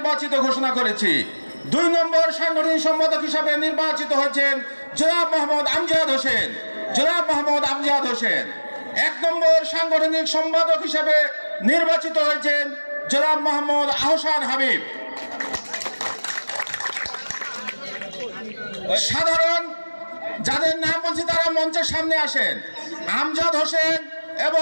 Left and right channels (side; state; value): both; inverted; correlation -1.00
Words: ঘোষণা করেছি। 2 নম্বর সাংগঠনিক সম্পাদক হিসাবে নির্বাচিত হয়েছেন জনাব মোহাম্মদ আমজাদ হোসেন। 1 নম্বর সাংগঠনিক সম্পাদক হিসাবে নির্বাচিত হয়েছেন জনাব মোহাম্মদ আহসান হাবিব। সাধারণ যাদের নাম বলছি তারা মঞ্চের সামনে আসেন। আমজাদ হোসেন